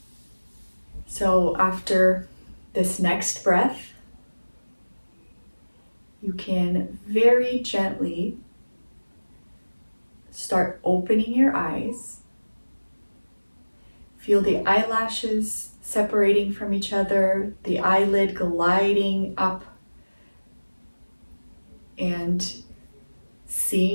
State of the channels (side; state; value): both; inverted; correlation -1.00